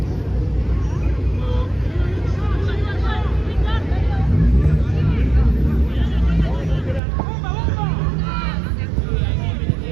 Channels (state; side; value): drops out; left; at 7.0 s